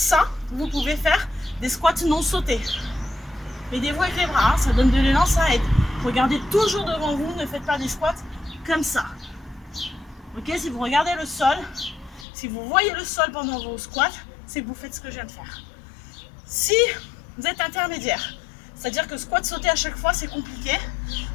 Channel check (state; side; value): drops out; right; at 12.2 s